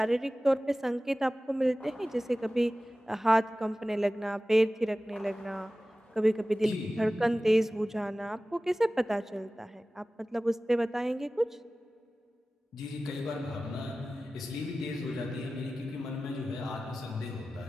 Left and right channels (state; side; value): normal; both; correlation 0.96